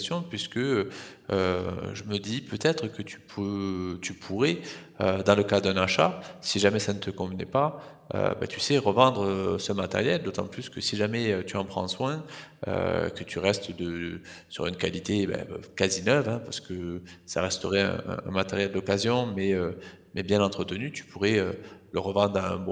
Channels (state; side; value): identical; both; correlation 1.00